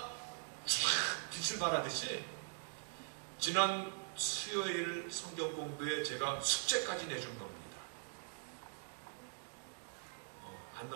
쫙 빛을 발하듯이 지난 수요일 성경 공부에 제가 숙제까지 내준 겁니다. 안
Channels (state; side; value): silent; left; digital silence